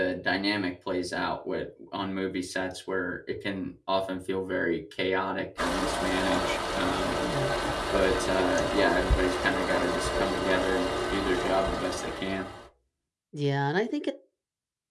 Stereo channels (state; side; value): identical; both; correlation 1.00